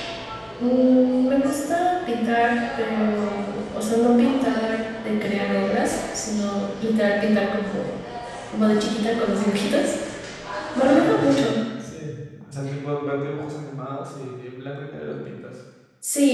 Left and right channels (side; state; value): both; identical; correlation 1.00